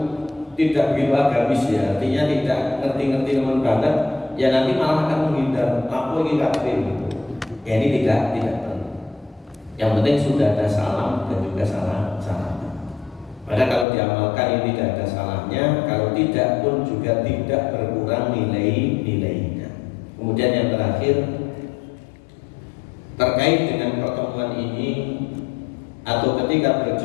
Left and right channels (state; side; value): drops out; right; at 13.9 s